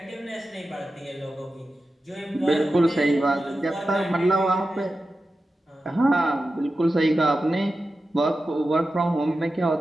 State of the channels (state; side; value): normal; both; correlation 0.92